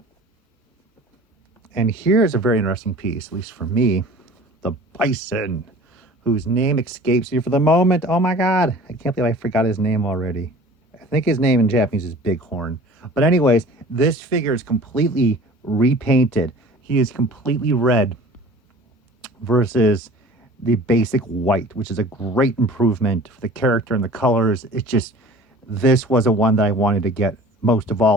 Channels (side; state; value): both; normal; correlation 0.44